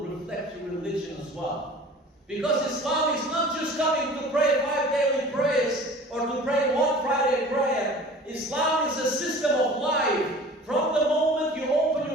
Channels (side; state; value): both; normal; correlation 0.44